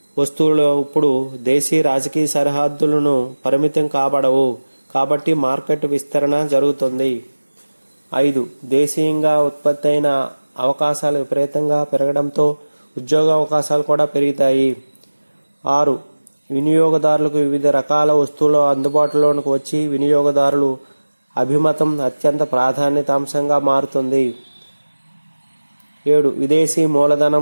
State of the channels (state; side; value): inverted; both; correlation -1.00